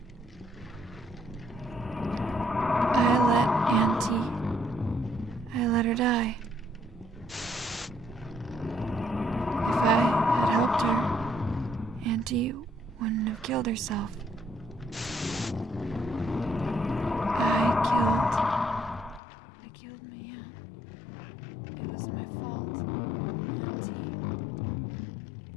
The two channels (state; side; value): drops out; right; at 19.2 s